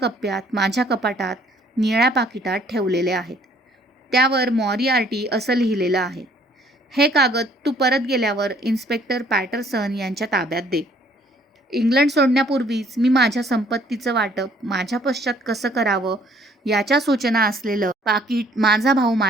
माझ्या कपाटात निळ्या पाकिटात ठेवलेले आहेत. त्यावर मॉरिआर्टी असं लिहिलेलं आहे, हे कागद तू परत गेल्यावर इन्स्पेक्टर पॅटरसन यांच्या ताब्यात दे. इंग्लंड सोडण्यापूर्वीच मी माझ्या संपत्तीचं वाटप माझ्या पश्चात कसं करावं याच्या सूचना असलेलं पाकीट माझा भाऊ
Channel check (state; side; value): normal; both; correlation 0.60